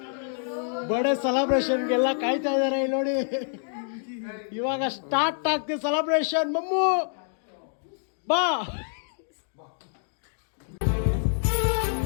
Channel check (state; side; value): silent; right; digital silence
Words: ಬರ್ಡೇ ಸೆಲೆಬ್ರೇಷನ್ಗೆಲ್ಲ ಕಾಯ್ತಾ ಇದಾರೆ. ನೋಡಿ, ಇವಾಗ ಸ್ಟಾರ್ಟ್ ಆಗ್ತಿದೆ ಸೆಲೆಬ್ರೇಷನ್. ಮಮ್ಮು ಬಾ.